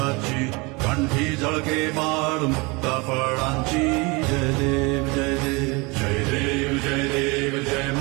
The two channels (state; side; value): quieter; left; 26.8 dB